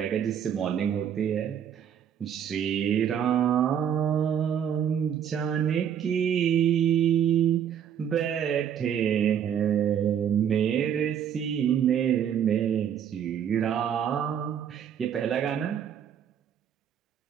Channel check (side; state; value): left; quieter; 8.9 dB